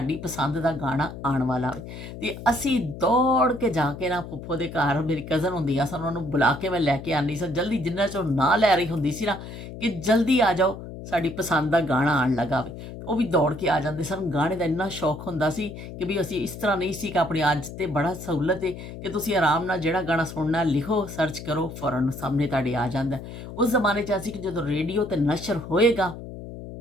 ਪਸੰਦ ਦਾ ਗਾਣਾ ਆਉਣ ਵਾਲਾ ਹੋਵੇ। ਤੇ ਅਸੀਂ ਦੌੜ ਕੇ ਜਾ ਕੇ ਨਾ ਫੁੱਫੋ ਦੇ ਘਰ, ਮੇਰੀ ਕਜ਼ਨ ਹੁੰਦੀ ਆ ਸਨ, ਉਹਨਾਂ ਨੂੰ ਬੁਲਾ ਕੇ ਮੈਂ ਲੈ ਕੇ ਆਉਂਦੀ ਸਾਂ ਜਲਦੀ, ਜਿੰਨਾ ਚਿਰ ਨਾ ਲੈ ਰਹੀ ਹੁੰਦੀ ਸੀ ਨਾ ਕਿ ਜਲਦੀ ਆ ਜਾਓ ਸਾਡੀ ਪਸੰਦ ਦਾ ਗਾਣਾ ਆਉਣ ਲੱਗਾ ਵੇ। ਉਹ ਵੀ ਦੌੜ ਕੇ ਆ ਜਾਂਦੇ ਸਨ। ਗਾਣੇ ਦਾ ਇੰਨਾ ਸ਼ੌਕ ਹੁੰਦਾ ਸੀ ਕਿ ਵੀ ਅਸੀਂ ਇਸ ਤਰ੍ਹਾਂ ਨਹੀਂ ਸੀ ਕਿ ਆਪਣੀ ਅੱਜ ਤੇ ਬੜਾ ਸਹੂਲਤ ਹੈ ਕਿ ਤੁਸੀਂ ਆਰਾਮ ਨਾਲ ਜਿਹੜਾ ਗਾਣਾ ਸੁਣਨਾ ਲਿਖੋ, ਸਰਚ ਕਰੋ, ਫੌਰਨ ਸਾਹਮਣੇ ਤੁਹਾਡੇ ਆ ਜਾਂਦਾ। ਉਸ ਜ਼ਮਾਨੇ 'ਚ ਅਸੀਂ ਕਿ ਜਦੋਂ ਰੇਡੀਓ 'ਤੇ ਨਸ਼ਰ ਹੋਏਗਾ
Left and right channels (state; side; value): noise; left; hum, 11 dB below the sound